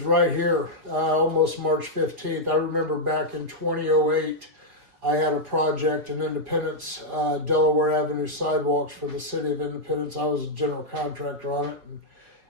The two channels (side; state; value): left; late; 4.7 ms